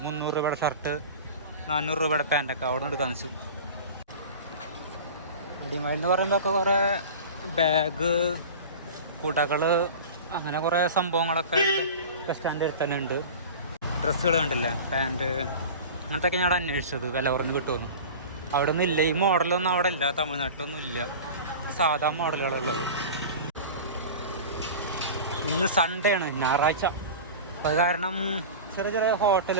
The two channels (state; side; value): inverted; both; correlation -0.34